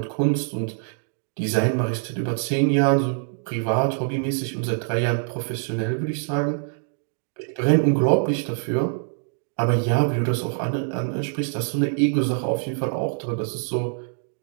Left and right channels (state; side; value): silent; left; 58 dB below the other